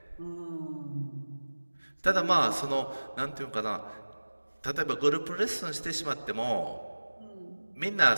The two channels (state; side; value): inverted; both; correlation -1.00